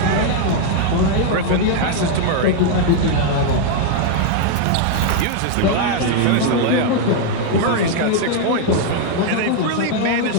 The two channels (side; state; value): both; different; correlation 0.00